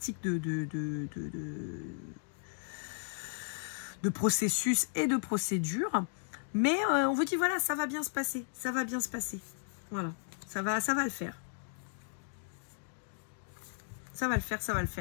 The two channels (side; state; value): right; silent; digital silence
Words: de processus et de procédure. Mais on vous dit, voilà, ça va bien se passer. Ça va bien se passer. Voilà, ça va le faire. Ça va le faire, ça va le